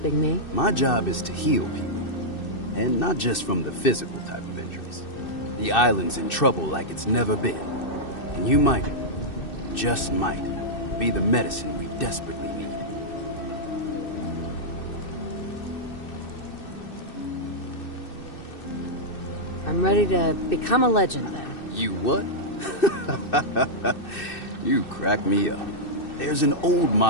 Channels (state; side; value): late; right; 2.6 ms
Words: me? My job is to heal people, and not just from the physical type of injuries. The island's in trouble like it's never been, and you might, just might, be the medicine we desperately need. I'm ready to become a legend, then. You what? You crack me up. There's an old